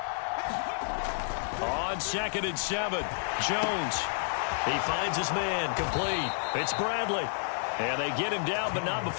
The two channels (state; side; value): silent; right; digital silence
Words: On 2nd and 7, Jones. He finds his man, complete. It's Bradley. And they get him down, but not